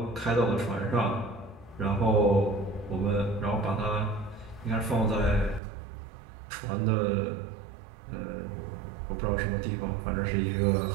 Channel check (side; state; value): left; drops out; at 5.6 s